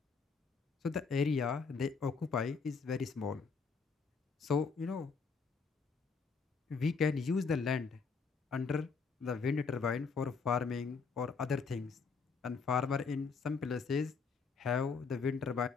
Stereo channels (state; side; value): quieter; right; 5.1 dB